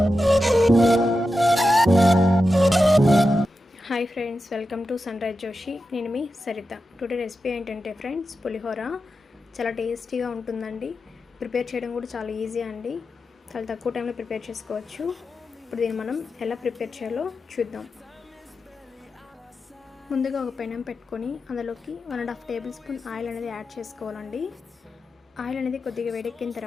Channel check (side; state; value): both; normal; correlation 0.90